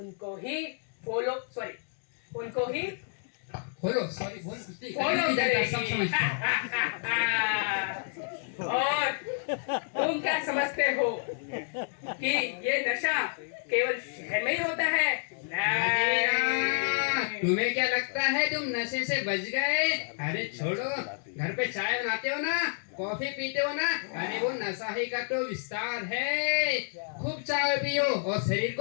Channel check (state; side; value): silent; right; digital silence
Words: ही उनको ही बोलो, सॉरी बोल, फॉलो करेगी। और तुम क्या समझते हो कि ये नशा केवल शहर में ही होता है? नहीं। तुम्हें क्या लगता है तुम नशे से बच गए? अरे छोड़ो, घर पे चाय बनाते हो ना, कॉफी पीते हो ना, अरे वो नशा ही का तो विस्तार है। खूब चाय पियो और शरीर